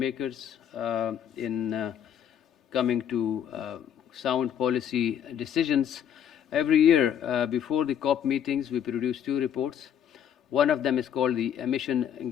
in coming to sound policy decisions. Every year, before the COP meetings, we produce 2 reports. One of them is called the Emission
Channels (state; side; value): quieter; right; 9.3 dB